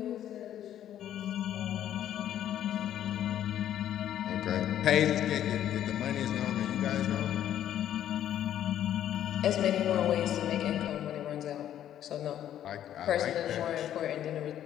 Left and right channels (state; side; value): quieter; right; 11.1 dB